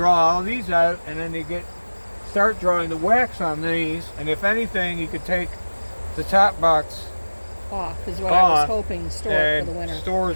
all these out, and then they start drawing the wax on these. And if anything, you could take the top box off is what I was hoping. Store it for the winter.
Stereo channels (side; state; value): both; inverted; correlation -1.00